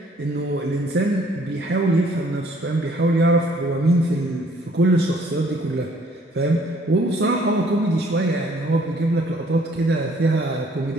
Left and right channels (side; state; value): both; normal; correlation 0.61